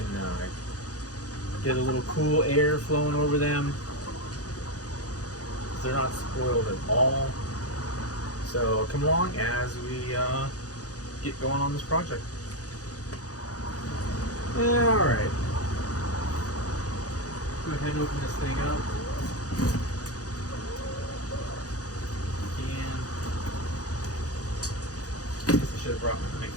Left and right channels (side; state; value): right; late; 0.67 ms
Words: get a little cool air flowing over them. They're not spoiled at all. So come along as we get going on this project. Alright. Go ahead and open this thing up. I guess I should have brought my mic